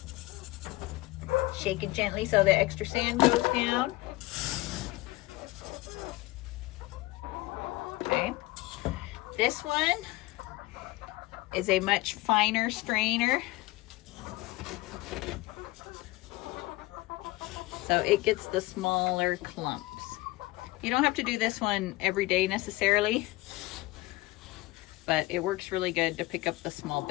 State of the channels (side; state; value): right; quieter; 20.2 dB